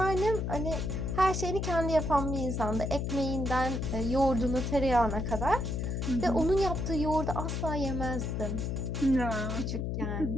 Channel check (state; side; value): noise; left; hum, 2 dB below the sound